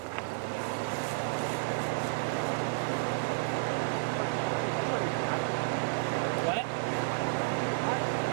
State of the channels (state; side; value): silent; left; 57 dB below the other